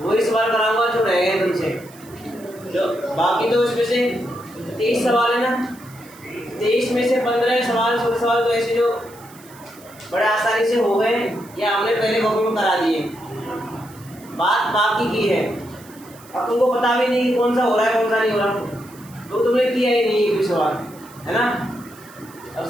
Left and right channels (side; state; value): right; noise; hiss, 23 dB below the sound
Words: सवाल कराऊंगा जो रह गए तुमसे। जो बाकी तो इसमें से 23 सवाल है ना, 23 में से 15 सवाल 16 सवाल तो ऐसे जो बड़े आसानी से हो गए या हमने पहले कॉपी में करा दिए, बात बाकी की है। अब तुमको पता भी नहीं कि कौन सा हो रहा है कौन सा नहीं हो रहा, तो तुमने किया ही नहीं एक भी सवाल, है ना। अब